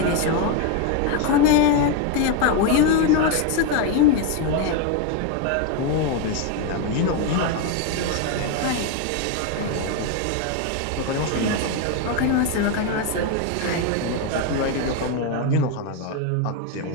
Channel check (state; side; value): different; both; correlation 0.01